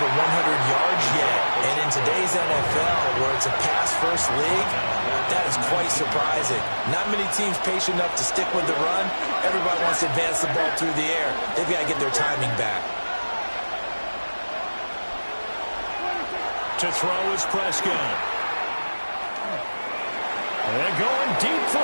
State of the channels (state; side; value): inverted; both; correlation -1.00